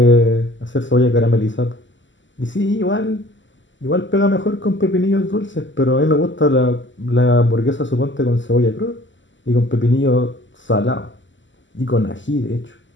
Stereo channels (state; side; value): late; right; 0.54 ms